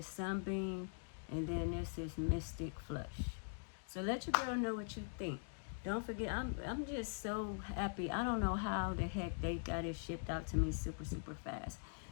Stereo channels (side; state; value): right; silent; digital silence